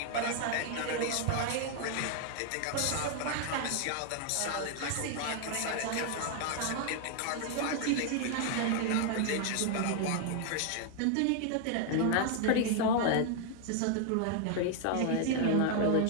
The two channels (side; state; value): both; different; correlation 0.00